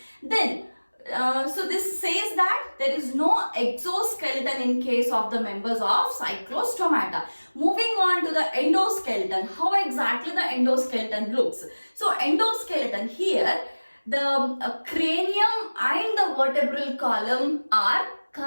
Then, so this says that there is no exoskeleton in case of the members of Cyclostomata. Moving on to the endoskeleton, how exactly the endoskeleton looks. So endoskeleton here, the cranium and the vertebral column are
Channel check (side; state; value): both; inverted; correlation -1.00